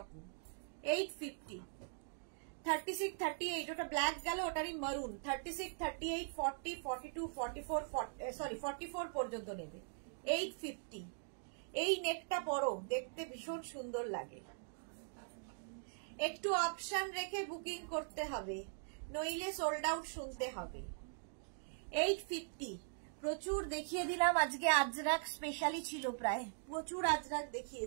850, 36, 38, ওটা ব্ল্যাক গেল, ওটারই মারুন। 36, 38, 40, 42, 44, সরি 44 পর্যন্ত নেবে। 850। এই নেকটা পরো, দেখতে ভীষণ সুন্দর লাগে। একটু অপশন রেখে বুকিং করতে হবে, নইলে সোল্ড আউট শুনতে হবে। 850। প্রচুর দেখিয়ে দিলাম আজকে, আজরাক স্পেশালি ছিল, প্রায় প্রচুর আজরাক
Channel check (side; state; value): left; silent; digital silence